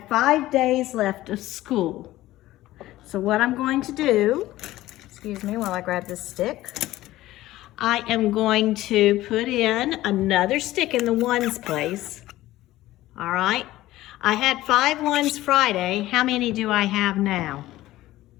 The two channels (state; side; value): quieter; right; 16.0 dB